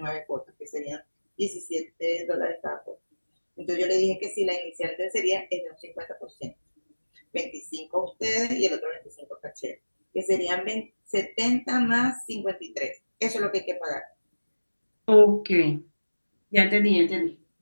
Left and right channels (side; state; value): both; inverted; correlation -1.00